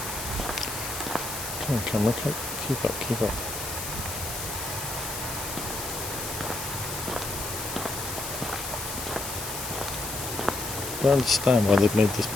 Come on, camera, keep up, keep up. I don't understand why they've made this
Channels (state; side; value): noise; left; hiss, 6 dB below the sound